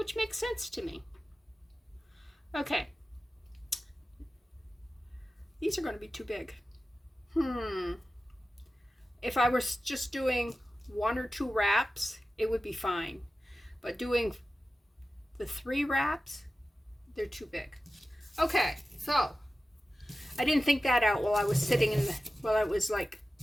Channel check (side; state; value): both; normal; correlation 0.94